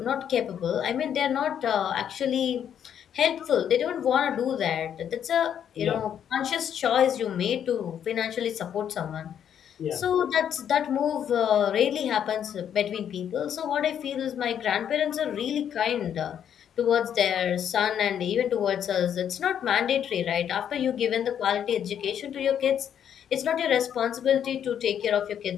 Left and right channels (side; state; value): right; quieter; 9.1 dB